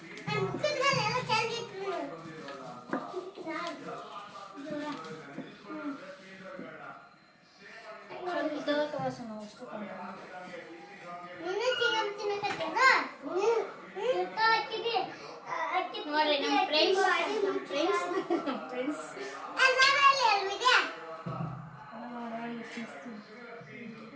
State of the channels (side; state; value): both; identical; correlation 1.00